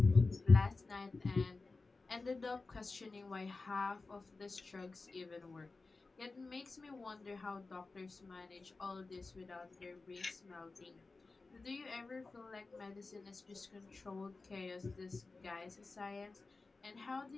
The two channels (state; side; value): quieter; right; 3.7 dB